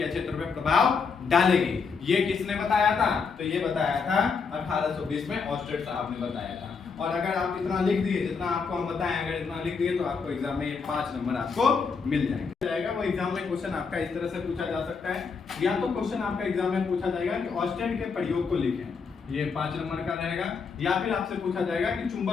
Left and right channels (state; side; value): quieter; right; 5.3 dB